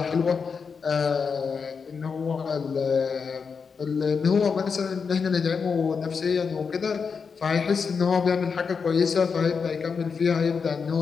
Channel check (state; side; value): quieter; right; 5.6 dB